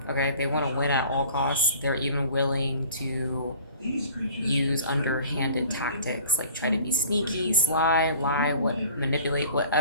Okay, they want to win at all costs. They're even willing to use underhanded tactics, like try to be sneaky, sly, lie, manipulate,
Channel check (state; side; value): inverted; both; correlation -0.48